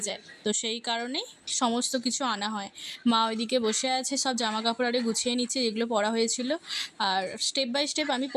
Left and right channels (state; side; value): identical; both; correlation 1.00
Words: যায়, তো সেই কারণেই সমস্ত কিছু আনা হয়। মা ওইদিকে বসে আছে, সব জামা কাপড় আরে গুছিয়ে নিচ্ছে যেগুলো পরা হয়েছিল। আর স্টেপ বাই স্টেপ আমি